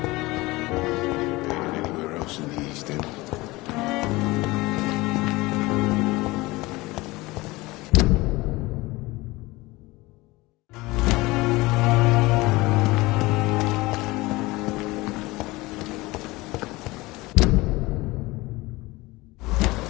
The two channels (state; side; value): quieter; right; 21.2 dB